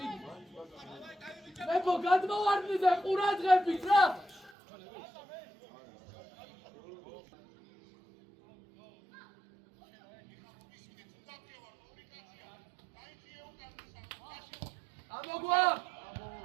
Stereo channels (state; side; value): drops out; left; at 4.5 s